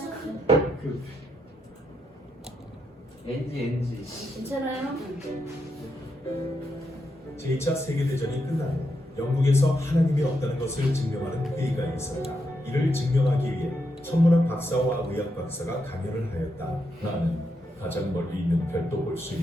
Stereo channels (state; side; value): normal; both; correlation 0.82